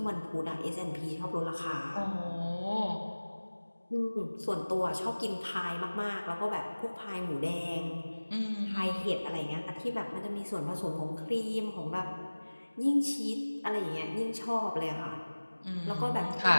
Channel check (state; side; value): inverted; both; correlation -1.00